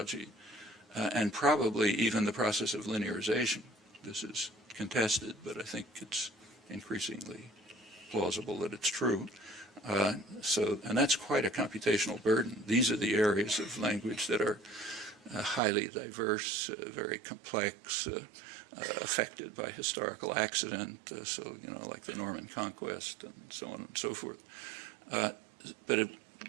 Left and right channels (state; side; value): drops out; left; at 15.6 s